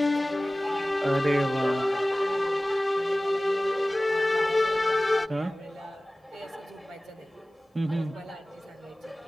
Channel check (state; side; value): normal; both; correlation 0.98